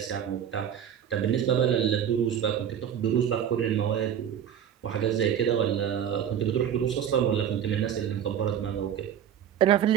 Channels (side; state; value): left; quieter; 9.2 dB